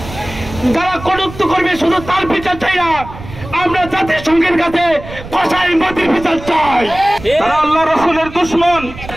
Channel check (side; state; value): right; noise; rumble, 13 dB below the sound